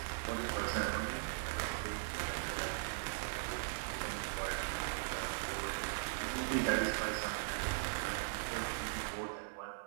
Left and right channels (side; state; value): left; silent; 51 dB below the other